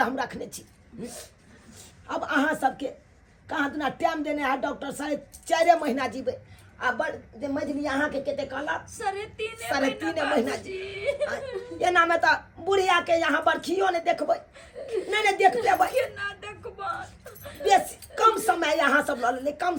हम रखने छी। अब अहाँ सबके कहाँ दिना टाइम देने है डॉक्टर 4.5 महीना जीवे आ बड़ जे मजली अहाँ के केते कहला 3.5 महीना जी एना में तो बुढ़िया के यहाँ बरखियो ने देखबै नहीं देख पेबै केना देखबा बेसी कम समय यहाँ सब ल ले कम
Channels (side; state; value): both; identical; correlation 1.00